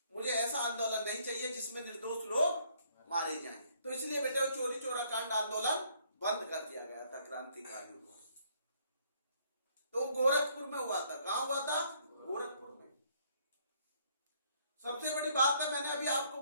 मुझे ऐसा आंदोलन नहीं चाहिए जिसमें निर्दोष लोग मारे जाएं। तो इसलिए बेटे चोरी चोरा कांड आंदोलन बंद कर दिया गया था क्रांतिकारियों को। तो गोरखपुर में हुआ था। कहां हुआ था? गोरखपुर में। सबसे बड़ी बात है, मैंने अभी आपको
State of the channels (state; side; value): inverted; both; correlation -0.65